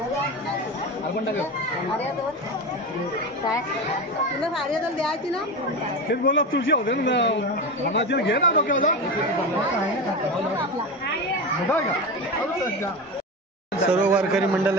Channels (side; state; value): both; normal; correlation 0.23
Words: तुला साडी द्यायची ना तेच बोला तुळशी होते ना मनाची घे ना डोक्याला सर्व वारकरी